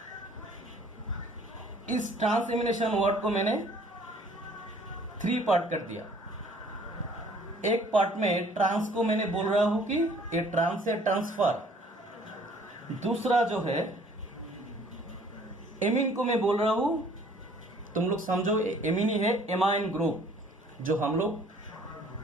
इस ट्रांस एलिमिनेशन वर्ड को मैंने 3 पार्ट कर दिया। एक पार्ट में ट्रांस को मैंने बोल रहा हूं कि ये ट्रांस है ट्रांसफर। दूसरा जो है एमीन को मैं बोल रहा हूं, तुम लोग समझो एमीन ही है, एमाइन ग्रुप, जो हम लोग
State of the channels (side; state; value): both; normal; correlation 0.56